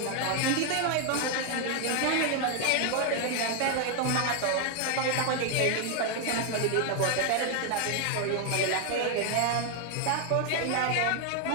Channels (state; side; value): different; both; correlation 0.00